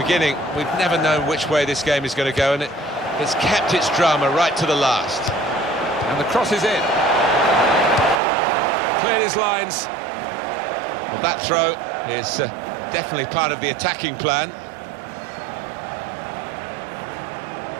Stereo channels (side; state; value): left; drops out; at 8.2 s